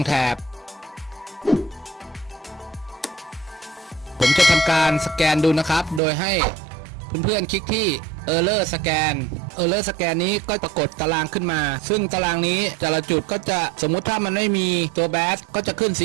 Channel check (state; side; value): drops out; left; at 6.0 s